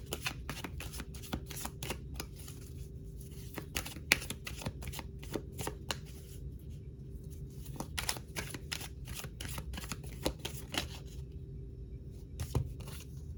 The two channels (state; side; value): identical; both; correlation 1.00